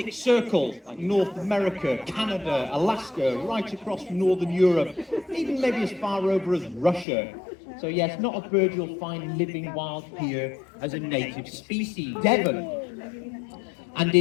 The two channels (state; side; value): drops out; right; at 7.1 s